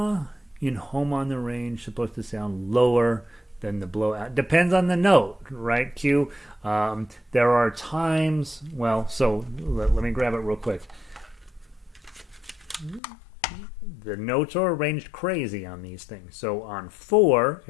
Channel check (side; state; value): right; drops out; at 13.0 s